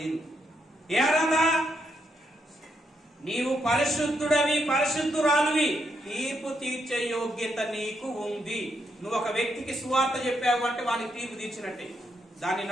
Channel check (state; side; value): normal; both; correlation 0.79